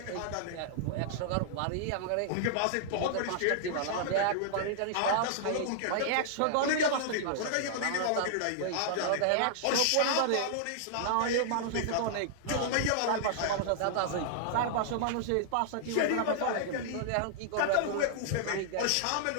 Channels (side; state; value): both; different; correlation -0.01